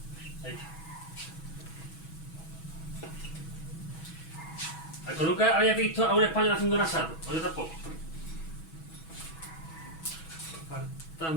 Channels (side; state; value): right; late; 6.2 ms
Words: Ahí está. ¿Algo nunca había visto a un español haciendo un asado? O yo tampoco.